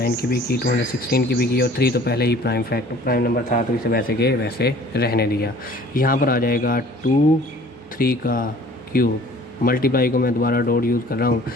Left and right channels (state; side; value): normal; both; correlation 0.50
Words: की भी की, 216 की भी की, और 3 तो पहले ही प्राइम नंबर था तो इसे वैसे के वैसे रहने दिया। यहाँ पर आ जाएगा 2 3 का क्यूब, मल्टीप्लाई को मैं दोबारा डॉट यूज़ कर रहा हूँ,